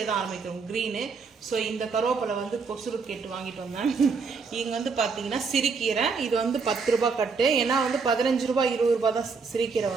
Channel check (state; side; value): quieter; left; 5.0 dB